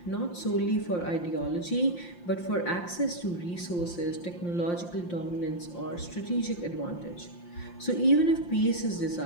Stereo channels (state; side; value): late; right; 5.7 ms